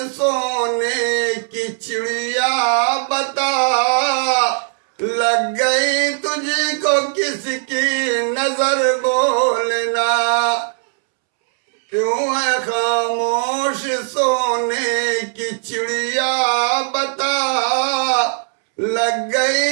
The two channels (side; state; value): left; silent; 67 dB below the other